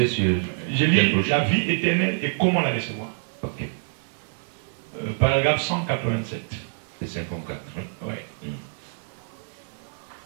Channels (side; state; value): left; silent; digital silence